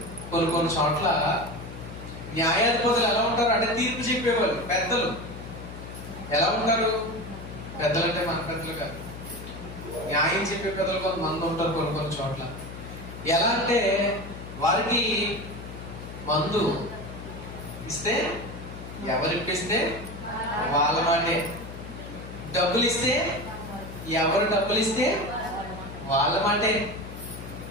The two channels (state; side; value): noise; left; hum, 11 dB below the sound